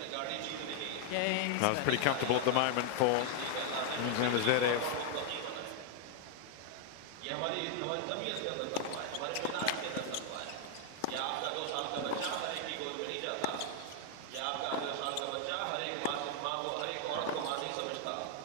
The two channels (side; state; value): both; different; correlation 0.00